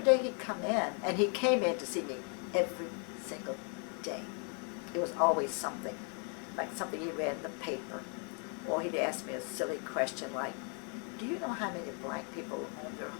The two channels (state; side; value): quieter; right; 39.3 dB